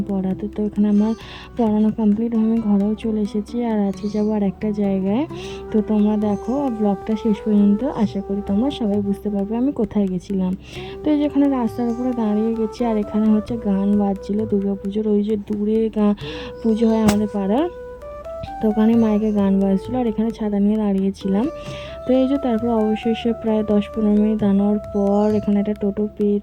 পড়াতে। তো এখানে আমার পড়ানো কমপ্লিট, আমি ঘরেও চলে এসেছি। আর আজকে যাবো আর একটা জায়গায়। তো তোমরা দেখো ব্লগটা শেষ পর্যন্ত, আশা করি তোমরা সবাই বুঝতে পারবে আমি কোথায় গেছিলাম। তো এই যেখানে রাস্তার উপরে দাঁড়িয়ে গেছি, আর এখানে হচ্ছে গান বাজছিল দুর্গাপুজোর। ওই যে দূরে পুজো হয় আমাদের পাড়ার, তো ওখানে মাইকে গান বাজছিল, আর এখানে ছাতা নিয়ে দাঁড়িয়েছিলাম। তো এই যে তারপর অবশেষে প্রায় 10-15 মিনিট দাঁড়ানোর পর এখানে একটা টোটো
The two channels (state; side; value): identical; both; correlation 1.00